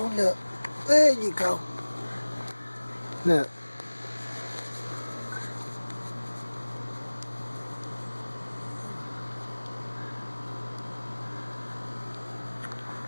look. There you go. Look.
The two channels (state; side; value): inverted; both; correlation -1.00